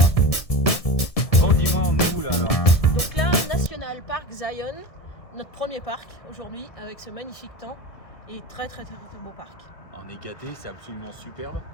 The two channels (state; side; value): late; right; 1.7 ms